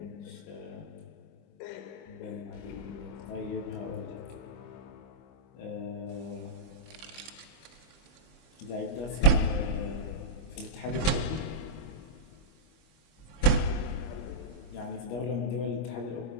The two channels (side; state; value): right; late; 25 ms